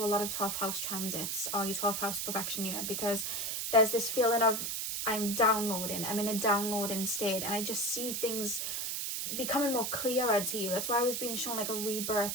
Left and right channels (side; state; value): right; noise; hiss, 2 dB below the sound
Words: a lot of 12th house transits or your 12th house perfection year, because there's this feeling of I'm in a downloading state, and I just see things becoming more clearer to you. That's why I was being shown like a